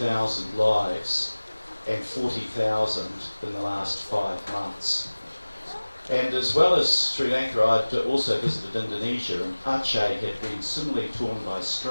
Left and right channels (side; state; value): both; inverted; correlation -1.00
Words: lives and 40,000 in the last 5 months. And as well as Sri Lanka, I'd also visited Indonesia, and Aceh had been similarly torn by